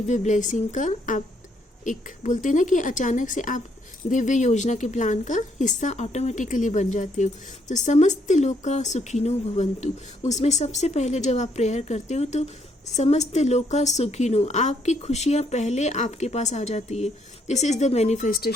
ब्लेसिंग का आप एक बोलते हैं ना कि अचानक से आप दिव्य योजना के प्लान का हिस्सा ऑटोमेटिकली बन जाते हो। तो समस्त लोका सुखिनो भवन्तु, उसमें सबसे पहले जब आप प्रेयर करते हो तो समस्त लोका सुखिनो, आपकी खुशियाँ पहले आपके पास आ जाती है। This is the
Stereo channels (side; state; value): both; normal; correlation 0.71